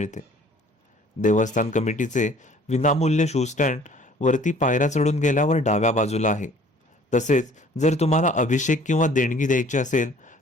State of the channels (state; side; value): normal; both; correlation 0.53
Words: देवस्थान कमिटीचे विनामूल्य शू स्टँड वरती पायऱ्या चढून गेल्यावर डाव्या बाजूला आहे. तसेच जर तुम्हाला अभिषेक किंवा देणगी द्यायची असेल